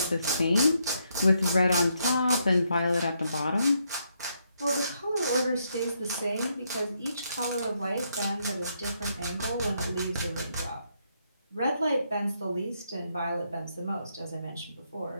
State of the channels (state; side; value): inverted; both; correlation -0.77